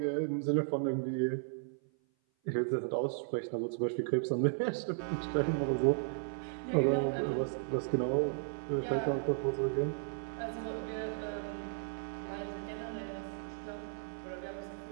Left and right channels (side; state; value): left; silent; 54 dB below the other